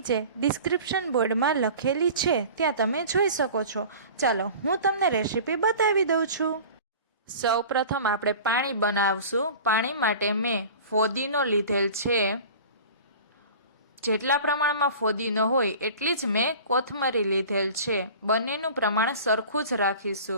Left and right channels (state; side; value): inverted; both; correlation -0.40